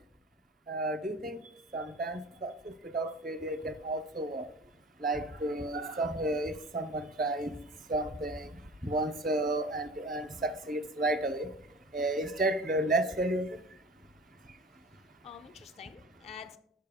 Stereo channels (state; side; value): normal; both; correlation 0.40